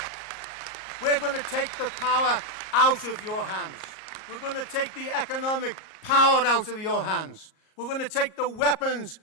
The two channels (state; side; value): late; right; 38 ms